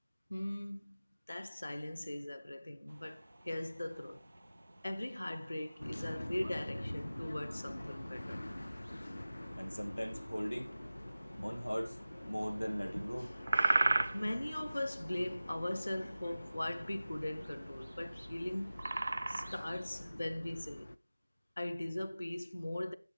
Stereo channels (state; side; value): inverted; both; correlation -0.96